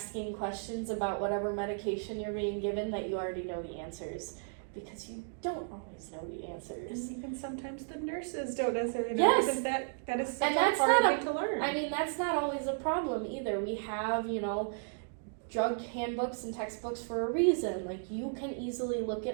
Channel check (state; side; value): silent; left; digital silence